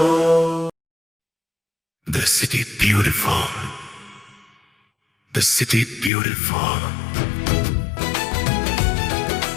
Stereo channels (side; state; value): right; drops out; at 6.1 s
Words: The city beautiful. The city beautiful.